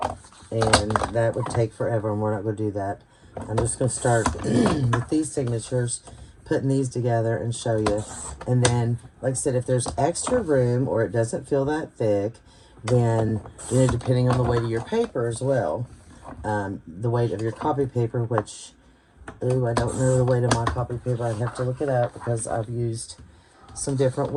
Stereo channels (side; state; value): both; identical; correlation 1.00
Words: and that would take forever, and we're not going to do that. I'm just going to start with these signatures, putting these together and show you. And then, like I said, if there's extra room or it doesn't feel that thick, then, you know, depending on the weight of your paper as well, the weight of your copy paper, which, ooh, I don't know the weight of my copy paper. I'd have to look it up because I've used some different